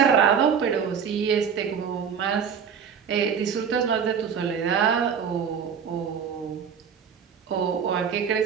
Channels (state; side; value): quieter; left; 7.1 dB